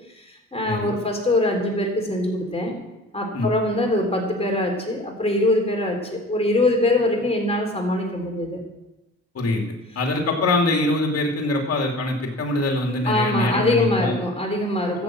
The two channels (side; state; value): both; normal; correlation 0.42